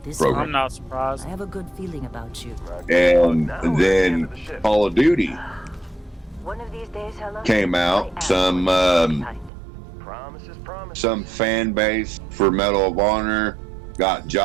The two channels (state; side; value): drops out; left; at 9.5 s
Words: program. I'm not surprised. I have a good feeling about you. And then Call of Duty came out. Some fan base for Medal of Honor got